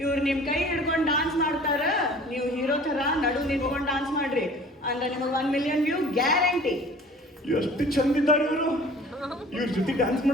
ಇವ್ರು ನಿಮ್ ಕೈ ಹಿಡ್ಕೊಂಡು ಡಾನ್ಸ್ ಮಾಡ್ತಾರ, ನೀವು ಹೀರೋ ತರ ನಡು ನಿಂತ್ಕೊಂಡು ಡಾನ್ಸ್ ಮಾಡ್ರಿ ಅಂದ್ರೆ ನಿಮಗೆ 1 ಮಿಲಿಯನ್ ವ್ಯೂ ಗ್ಯಾರಂಟಿ. ಎಷ್ಟು ಚಂದ ಇದ್ದಾರೆ ಇವರು, ಇವ್ರ ಜೊತೆ ಡ್ಯಾನ್ಸ್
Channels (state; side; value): normal; both; correlation 0.47